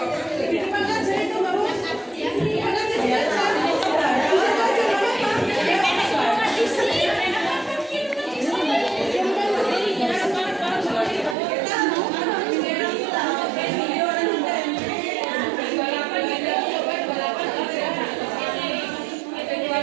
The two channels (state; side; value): drops out; left; at 11.4 s